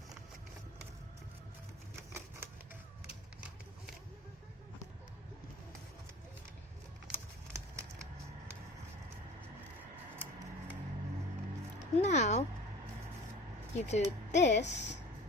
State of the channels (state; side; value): normal; both; correlation 0.41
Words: Now, you do this